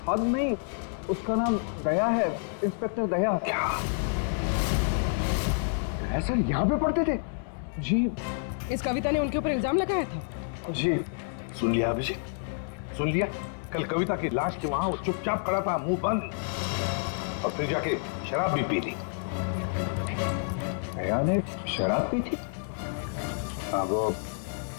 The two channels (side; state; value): right; silent; 59 dB below the other